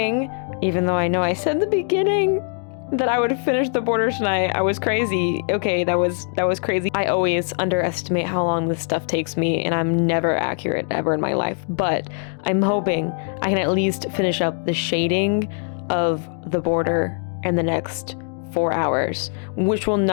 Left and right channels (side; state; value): right; silent; 55 dB below the other